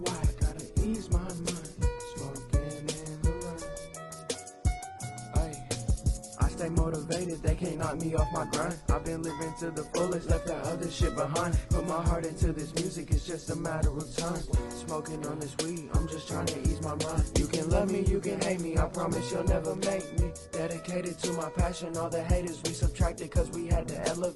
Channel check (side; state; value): both; identical; correlation 1.00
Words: why. Gotta ease my mind. Smoking in the rain. Ay, I stay motivated, they can't knock me off my grind. I've been living to the fullest, left that other shit behind. Put my heart into this music, it's just a matter of time. Smoking on this weed, I'm just trying to ease my mind. You can love me, you can hate me, I promise you'll never make me. Dedicated to my passion, all the haters we subtracted cause we had to